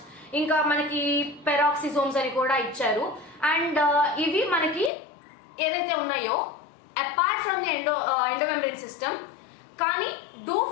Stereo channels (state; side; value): drops out; right; at 4.9 s